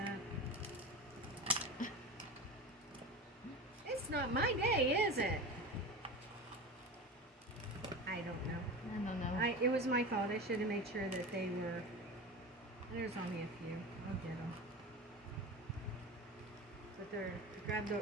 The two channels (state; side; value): normal; both; correlation 0.28